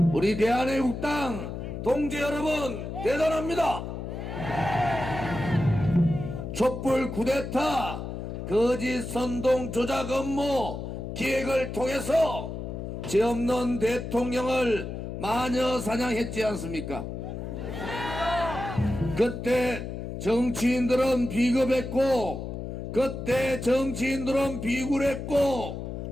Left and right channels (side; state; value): left; noise; hum, 6 dB below the sound